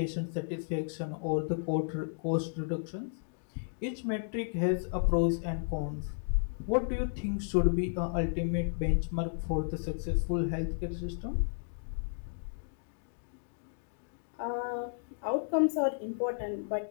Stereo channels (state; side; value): silent; right; digital silence